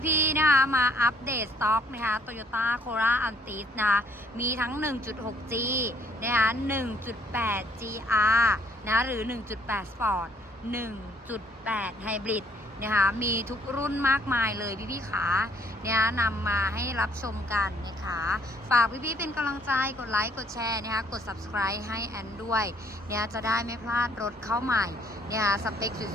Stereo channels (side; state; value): both; normal; correlation 0.63